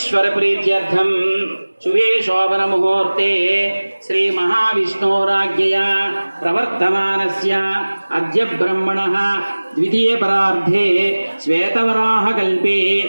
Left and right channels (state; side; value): inverted; both; correlation -1.00